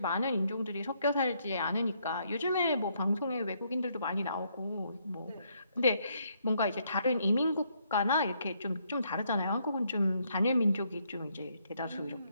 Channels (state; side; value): inverted; both; correlation -0.72